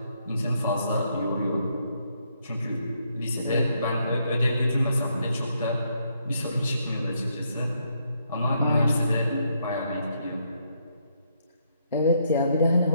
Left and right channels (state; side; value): inverted; both; correlation -0.75